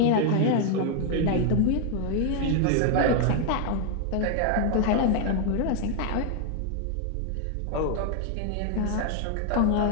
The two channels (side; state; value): both; different; correlation 0.00